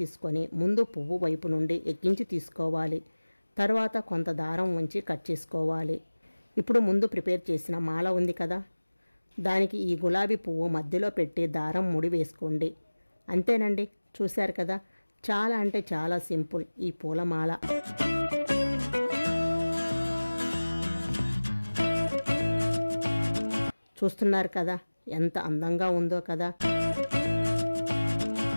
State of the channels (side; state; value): both; inverted; correlation -1.00